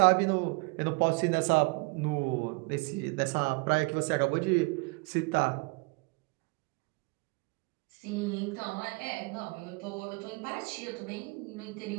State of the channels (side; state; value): left; quieter; 30.0 dB